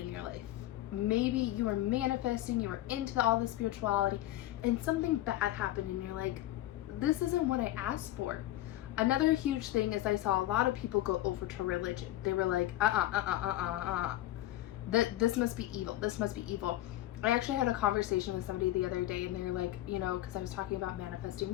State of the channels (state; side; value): quieter; right; 14.8 dB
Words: your life. Maybe you were manifesting, you were into all the spirituality, and something bad happened and you're like, this isn't what I asked for. Another huge thing is I saw a lot of people go over to religion. They were like, this must be evil. This must be evil. I actually had a conversation with somebody the other day, and they were like, you know, because I was talking about